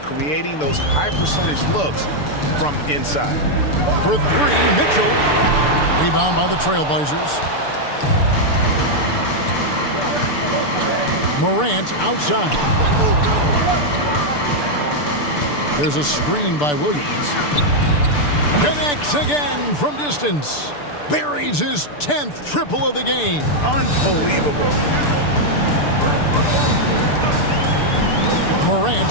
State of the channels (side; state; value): right; late; 6.8 ms